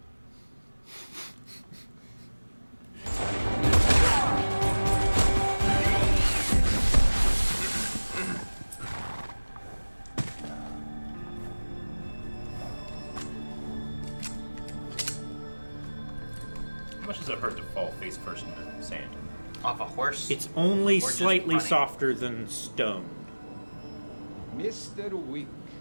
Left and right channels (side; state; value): both; inverted; correlation -1.00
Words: How much does it hurt to fall face first into sand? Off a horse? It's only just slightly running. softer than stone. Mr. Wick,